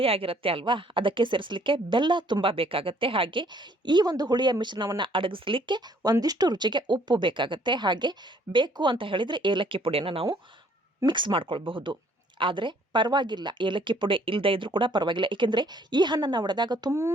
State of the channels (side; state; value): both; normal; correlation 0.61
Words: ಅಲ್ವಾ, ಅದಕ್ಕೆ ಸೇರಿಸಲಿಕ್ಕೆ ಬೆಲ್ಲ ತುಂಬ ಬೇಕಾಗತ್ತೆ. ಹಾಗೆ ಈ ಒಂದು ಹುಳಿಯ ಮಿಶ್ರಣವನ್ನು ಅಡಗಿಸಲಿಕ್ಕೆ ಒಂದಿಷ್ಟು ರುಚಿಗೆ ಉಪ್ಪು ಬೇಕಾಗತ್ತೆ. ಹಾಗೆ ಬೇಕು ಅಂತ ಹೇಳಿದರೆ ಏಲಕ್ಕಿ ಪುಡಿಯನ್ನು ನಾವು ಮಿಕ್ಸ್ ಮಾಡ್ಕೊಳ್ಬಹುದು. ಆದರೆ ಪರವಾಗಿಲ್ಲ, ಏಲಕ್ಕಿ ಪುಡಿ ಇಲ್ಲದೆ ಇದ್ರೂ ಕೂಡ ಪರವಾಗಿಲ್ಲ. ಏಕೆಂದರೆ ಈ ಹಣ್ಣನ್ನು ಒಡೆದಾಗ